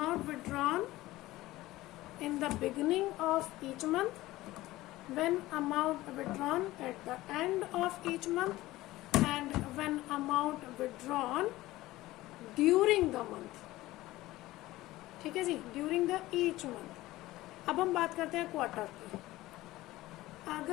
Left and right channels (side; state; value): right; quieter; 17.4 dB